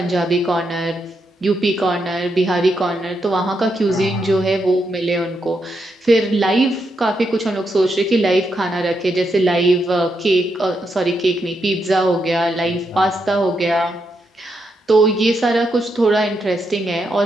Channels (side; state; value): both; normal; correlation 0.82